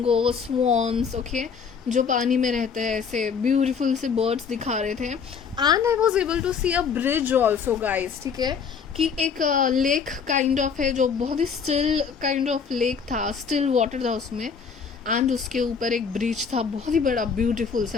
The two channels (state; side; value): quieter; right; 6.2 dB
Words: स्वॉन्स, ओके, जो पानी में रहते हैं, ऐसे ब्यूटीफुल से बर्ड्स दिखा रहे थे। And I was able to see a bridge also guys, ठीक है, कि एक लेक काइंड ऑफ है जो बहुत he still kind of lake था, स्टिल वाटर था उसमें, एंड उसके ऊपर एक ब्रिज था, बहुत ही बड़ा ब्यूटीफुल